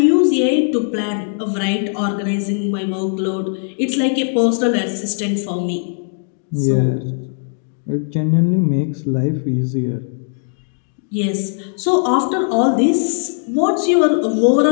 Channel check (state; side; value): silent; right; digital silence